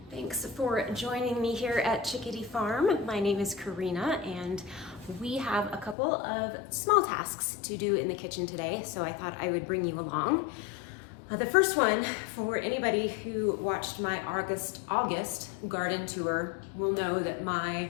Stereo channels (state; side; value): drops out; right; at 6.0 s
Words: Thanks for joining me here at Chickadee Farm. My name is Karina and we have a couple of small tasks to do in the kitchen today, so I thought I would bring you along. The first one, for anybody who watched my August garden tour, will know that my